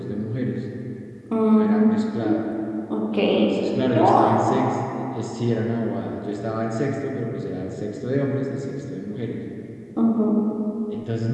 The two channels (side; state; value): both; identical; correlation 1.00